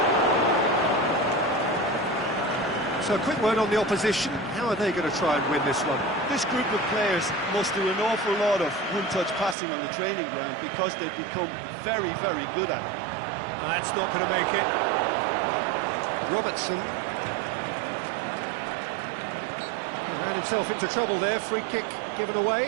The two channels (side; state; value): left; drops out; at 9.6 s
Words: So a quick word on the opposition. How are they going to try and win this one? This group of players must do an awful lot of one-touch passing on the training ground because they've become very, very good at it. That's not going to make it. Robertson. He ran himself into trouble there. Free kick given